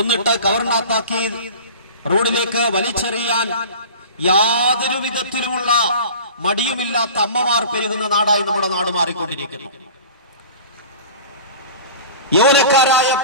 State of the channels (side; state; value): both; inverted; correlation -0.39